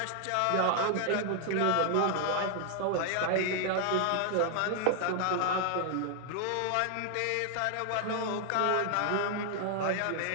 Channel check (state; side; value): different; both; correlation 0.00